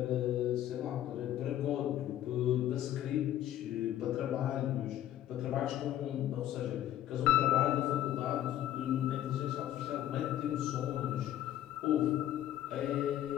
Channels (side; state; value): right; quieter; 12.4 dB